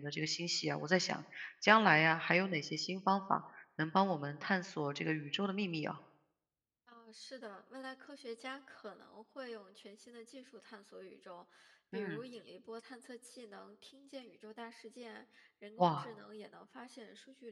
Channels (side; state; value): both; identical; correlation 1.00